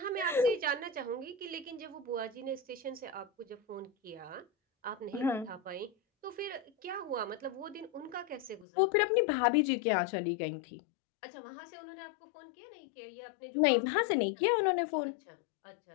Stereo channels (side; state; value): right; drops out; at 8.7 s